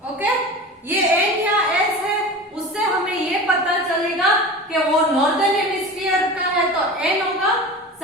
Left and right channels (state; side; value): normal; both; correlation 0.33